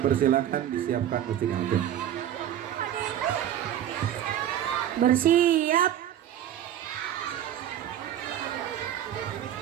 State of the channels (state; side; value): quieter; left; 11.0 dB